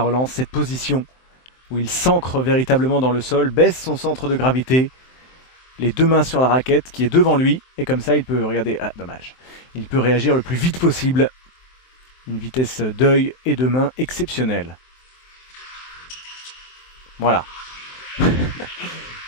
relance, cette position où il s'ancre véritablement dans le sol, baisse son centre de gravité, les deux mains sur la raquette qui est devant lui et comme ça il peut, regardez, dommage, il peut réagir le plus vite possible, une vitesse d'œil et de main exceptionnelle. Voilà,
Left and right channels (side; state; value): right; late; 23 ms